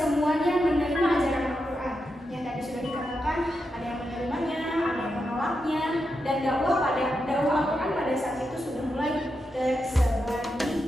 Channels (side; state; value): both; normal; correlation 0.86